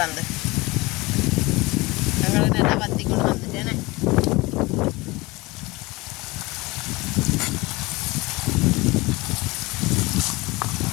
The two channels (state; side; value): quieter; right; 22.8 dB